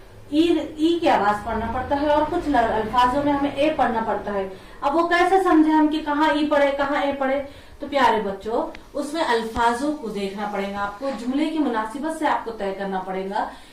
ई की आवाज पढ़ना पड़ता है और कुछ अल्फाजों में हमें ए पढ़ना पड़ता है। अब वो कैसे समझे हम कि कहाँ ई पढ़े कहाँ ए पढ़े। तो प्यारे बच्चों, उसमें अल्फाजों को देखना पड़ेगा आपको, जुमले की मुनासिबत से आपको तय करना पड़ेगा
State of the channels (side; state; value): both; identical; correlation 1.00